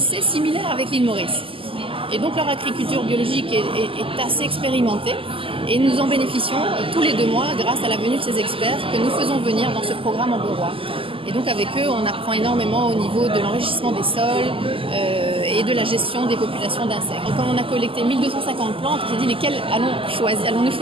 similaire avec l'île Maurice. Et donc leur agriculture biologique est assez expérimentée et nous en bénéficions tous les 2 mois grâce à la venue de ces experts que nous faisons venir dans ce programme Amberois. Et donc avec eux, on apprend énormément au niveau de l'enrichissement des sols et de la gestion des populations d'insectes. Donc, comme on a collecté 1250 plantes, on s'est dit lesquelles allons-nous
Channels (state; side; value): late; left; 0.26 ms